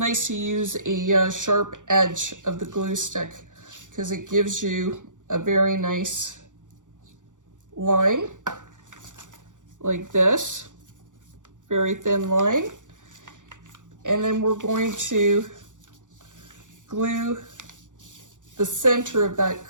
to use a sharp edge of the glue stick because it gives you a very nice line like this, very thin line. And then we're going to glue the center of that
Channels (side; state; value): left; late; 0.87 ms